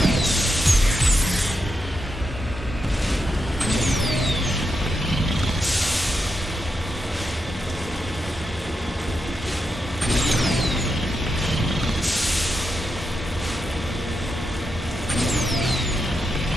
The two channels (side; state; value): both; normal; correlation 0.85